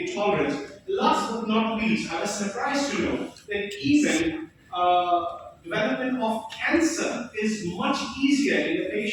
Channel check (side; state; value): both; identical; correlation 1.00